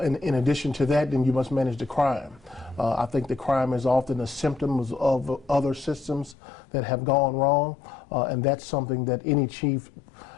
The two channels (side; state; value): right; drops out; at 6.4 s